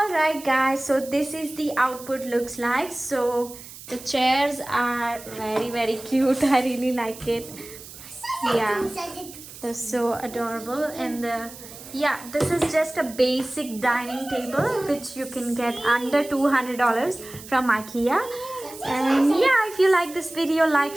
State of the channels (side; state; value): right; noise; hiss, 16 dB below the sound